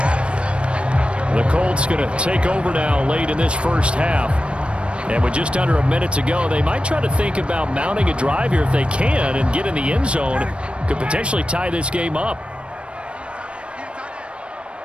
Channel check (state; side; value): late; left; 0.059 ms